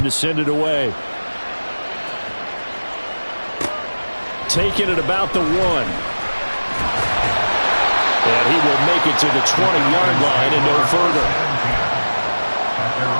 send it away. Taking it about the 1. And he will make it to the 20-yard line and no further. At their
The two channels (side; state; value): both; inverted; correlation -1.00